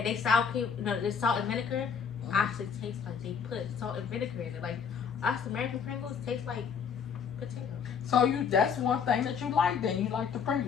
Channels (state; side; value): quieter; right; 6.7 dB